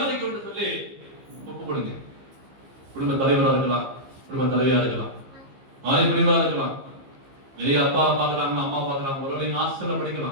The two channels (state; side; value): late; left; 15 ms